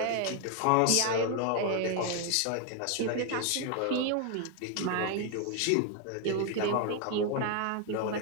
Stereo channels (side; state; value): both; different; correlation 0.01